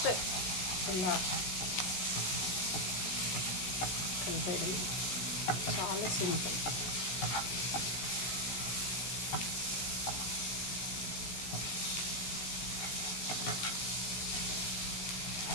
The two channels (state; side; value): late; right; 16 ms